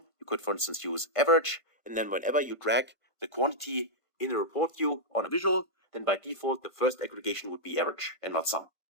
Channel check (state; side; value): late; right; 1.5 ms